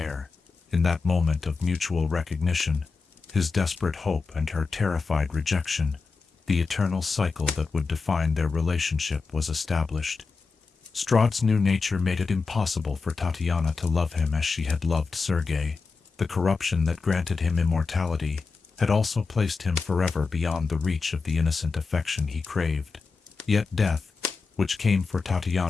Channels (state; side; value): quieter; right; 4.5 dB